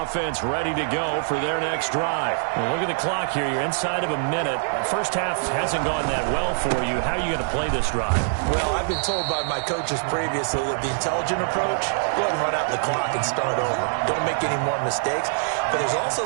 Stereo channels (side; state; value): left; silent; digital silence